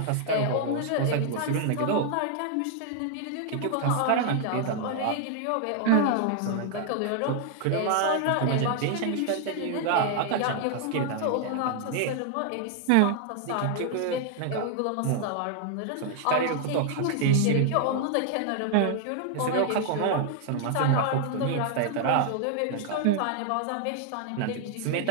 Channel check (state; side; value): different; both; correlation 0.00